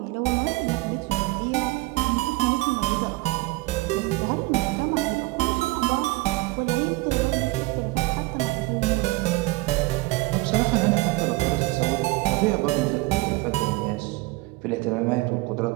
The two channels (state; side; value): quieter; left; 21.9 dB